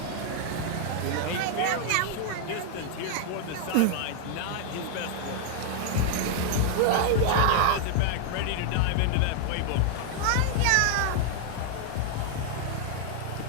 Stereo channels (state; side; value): different; both; correlation 0.00